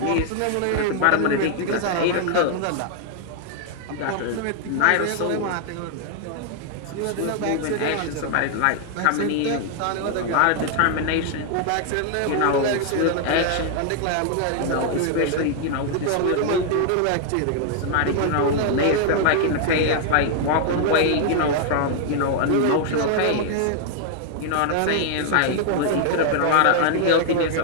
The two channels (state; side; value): different; both; correlation 0.00